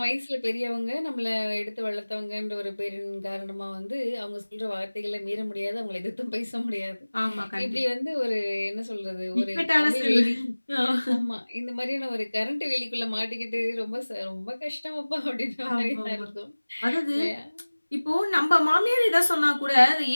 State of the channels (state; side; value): inverted; both; correlation -1.00